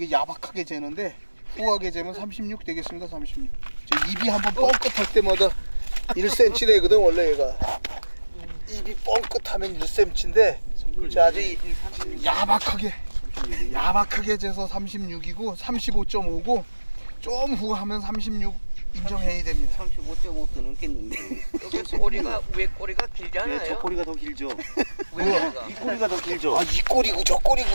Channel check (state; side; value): inverted; both; correlation -1.00